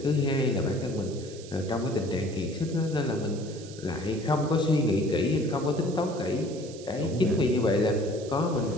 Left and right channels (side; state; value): right; noise; hiss, 18 dB below the sound